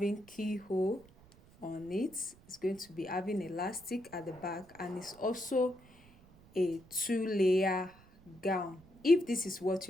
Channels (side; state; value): right; noise; rumble, 25 dB below the sound